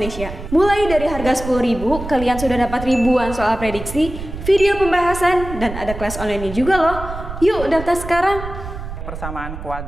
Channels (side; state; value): right; noise; rumble, 9 dB below the sound